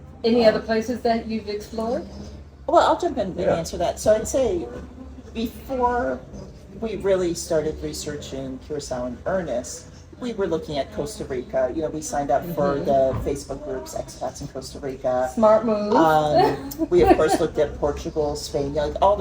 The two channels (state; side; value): identical; both; correlation 1.00